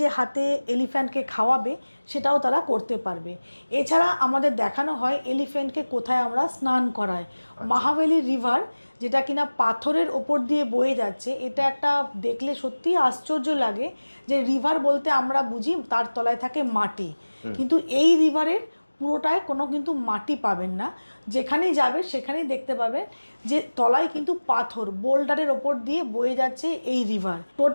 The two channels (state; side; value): inverted; both; correlation -1.00